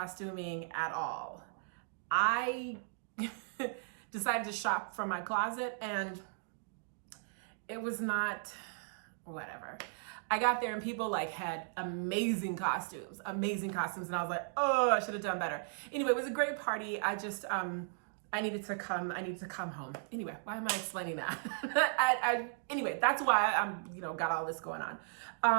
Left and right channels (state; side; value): silent; left; digital silence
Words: at all. I decided to shop from my closet and it was not whatever. I got there and people had amazing costumes. And I was like, oh, I should have done better. Anyway, it was a great party. I needed to come home. Anyway, why am I explaining that? Anyway, that's why I'm, got all this going